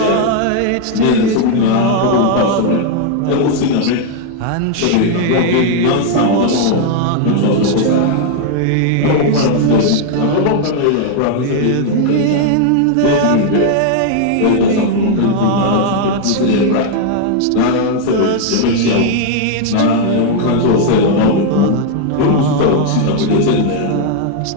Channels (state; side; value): different; both; correlation 0.00